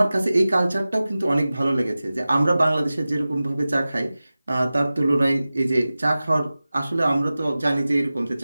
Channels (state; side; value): inverted; both; correlation -0.96